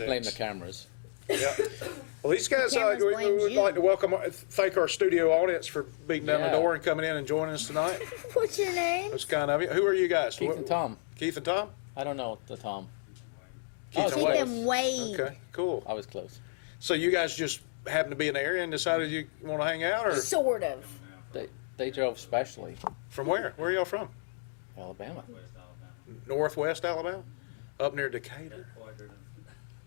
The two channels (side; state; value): right; silent; digital silence